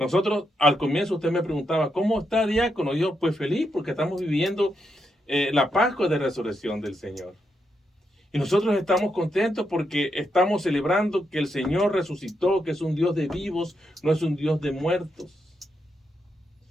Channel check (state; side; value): normal; both; correlation 0.82